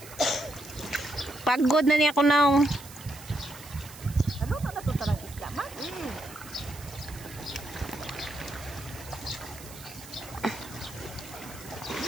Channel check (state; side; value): noise; right; hiss, 17 dB below the sound